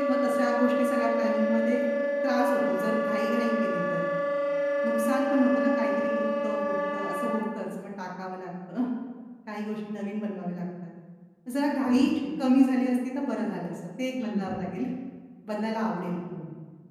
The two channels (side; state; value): both; identical; correlation 1.00